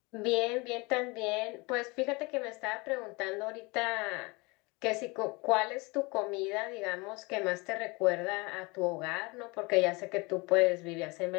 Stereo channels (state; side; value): quieter; right; 26.4 dB